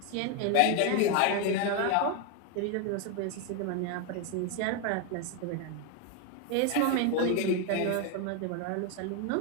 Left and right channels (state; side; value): different; both; correlation 0.01